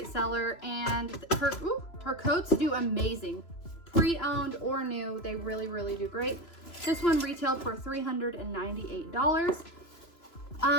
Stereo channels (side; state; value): right; late; 3.0 ms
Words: seller, and her coats do amazing. Pre-owned or new, they really, really do great. This one retailed for $398.